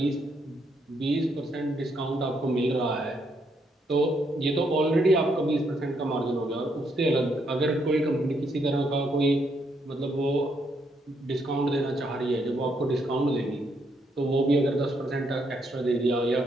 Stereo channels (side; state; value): both; normal; correlation 0.75